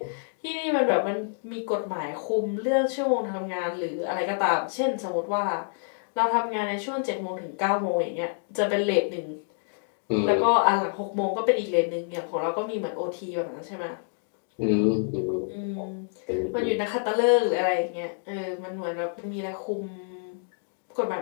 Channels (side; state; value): right; silent; digital silence